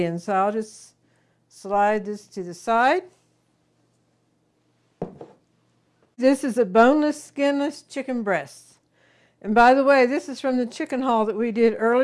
So I'll just slide this to the side. This is a boneless, skinless chicken breast. And by the way, this is from the chicken haul that we did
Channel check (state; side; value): identical; both; correlation 1.00